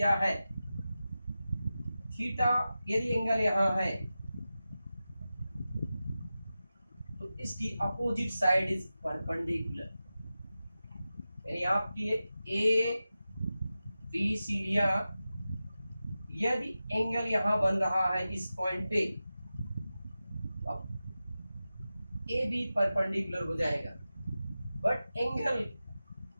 है। थीटा यदि एंगल यहां है तो इसकी अपोजिट साइड इज परपेंडिकुलर, यानी आपकी ए बी सीढ़ियां, यदि एंगल यहां बन रहा है इस पॉइंट पे, अब ए बी परपेंडिकुलर हो जाएगा। बट एंगल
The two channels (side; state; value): both; inverted; correlation -0.93